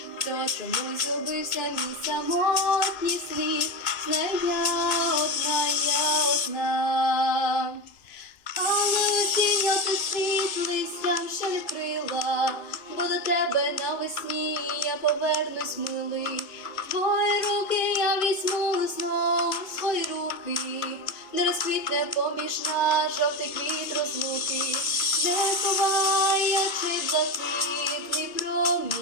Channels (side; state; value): right; late; 2.0 ms